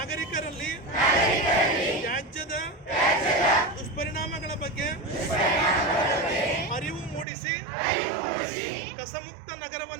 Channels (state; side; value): drops out; left; at 7.2 s